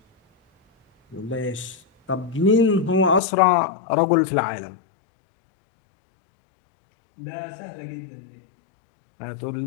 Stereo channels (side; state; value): right; drops out; at 3.2 s